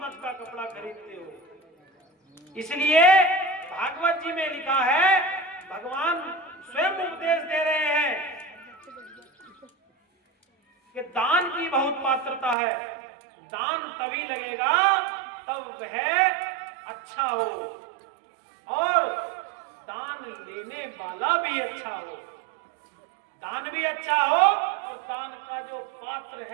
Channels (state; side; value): drops out; left; at 12.6 s